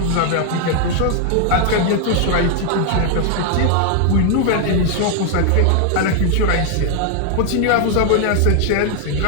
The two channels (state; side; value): different; both; correlation 0.00